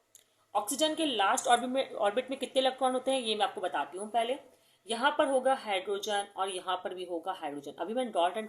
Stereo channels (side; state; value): both; identical; correlation 1.00